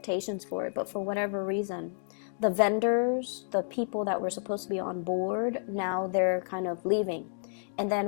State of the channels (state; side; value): silent; right; digital silence